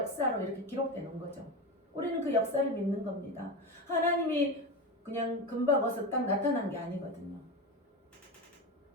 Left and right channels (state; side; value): normal; both; correlation 0.20